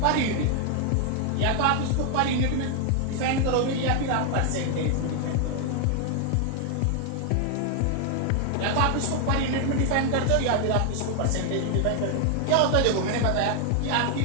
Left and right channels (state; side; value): different; both; correlation 0.00